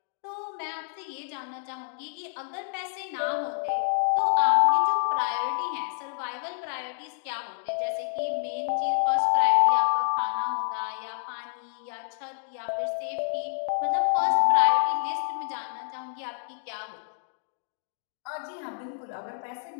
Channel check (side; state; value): right; silent; digital silence